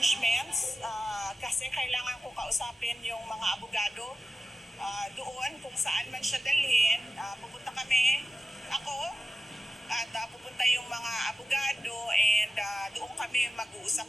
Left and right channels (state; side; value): normal; both; correlation 0.93